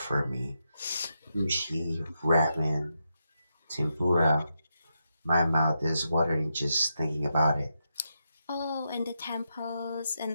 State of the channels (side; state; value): both; inverted; correlation -0.85